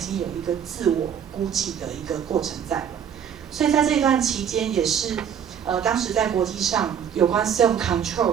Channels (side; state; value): left; quieter; 8.3 dB